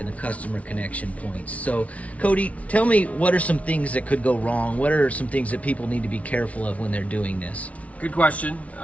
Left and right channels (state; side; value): late; right; 0.066 ms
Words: the customer connection points. So Cody, tell me, what are some things that could go wrong? What are some things that people need to be careful of when they're doing this? Good question.